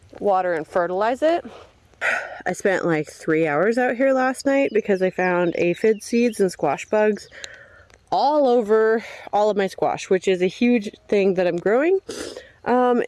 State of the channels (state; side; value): identical; both; correlation 1.00